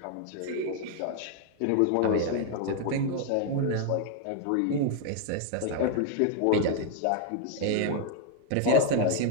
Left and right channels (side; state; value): both; different; correlation 0.00